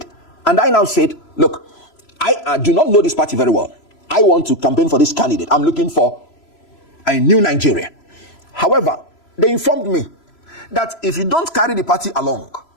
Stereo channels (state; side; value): late; right; 3.0 ms